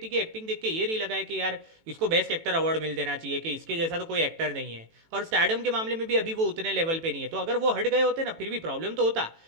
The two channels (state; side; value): late; left; 18 ms